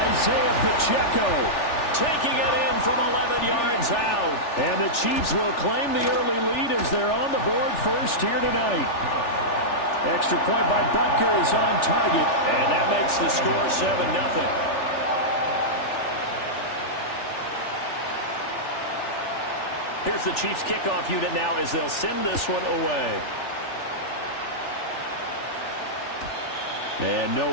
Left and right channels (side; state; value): right; late; 3.4 ms